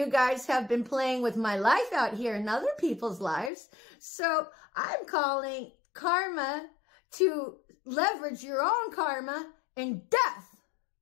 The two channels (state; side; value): drops out; right; at 3.5 s